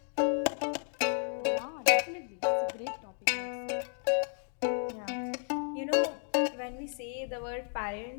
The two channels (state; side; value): silent; right; 56 dB below the other